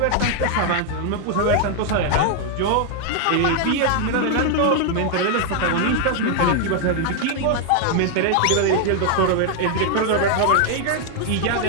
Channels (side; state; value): both; different; correlation 0.00